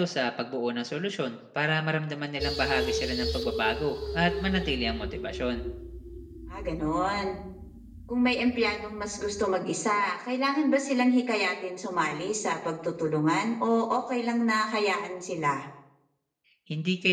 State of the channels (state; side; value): identical; both; correlation 1.00